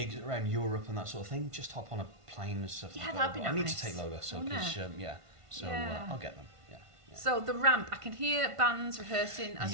around Europe and that sort of thing. Just hop on a plane and stuff. Yeah, like that'd that. be I need nice, to take Lola, so wouldn't because it? yeah. So Yeah. I'll get them. Yeah. So the Ramp, I can hear bands rehearsing as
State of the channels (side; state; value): left; late; 1.5 ms